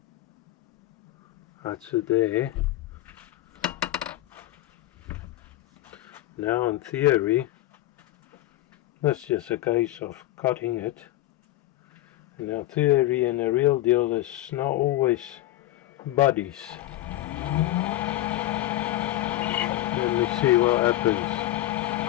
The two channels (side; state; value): right; quieter; 15.4 dB